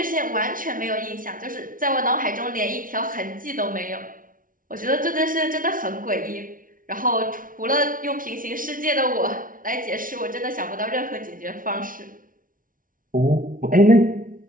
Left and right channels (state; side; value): late; left; 0.39 ms